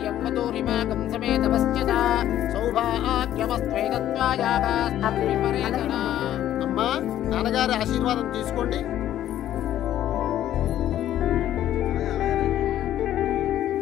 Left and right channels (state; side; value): quieter; right; 12.1 dB